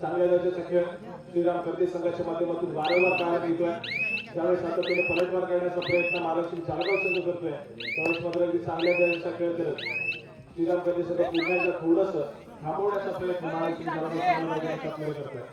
दर्जाचा खेळ श्रीराम कर्दे संघाच्या माध्यमातून वारंवार पाहायला मिळतोय त्यावेळेस सातत्याने पलटवार करण्याचा प्रयत्न महालक्ष्मी जालगाव संघ करतोय त्यावेळेस मात्र अगदी चांगल्या दर्जाचा खेळ करत श्रीराम कर्दे संघ पुन्हा एकदा थोडस थांबवण्याचा प्रयत्न महालक्ष्मी जालगाव संघाचा खेळ करतोय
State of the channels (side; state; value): both; identical; correlation 1.00